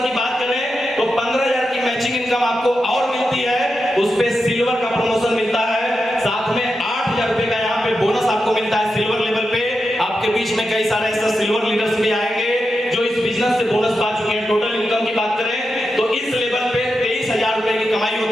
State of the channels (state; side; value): normal; both; correlation 0.88